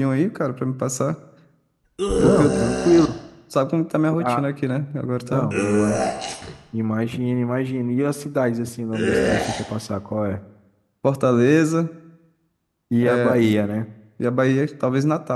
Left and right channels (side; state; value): both; identical; correlation 1.00